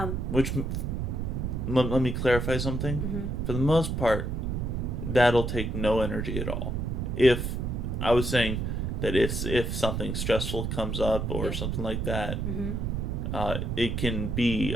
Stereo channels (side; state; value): right; noise; rumble, 1 dB below the sound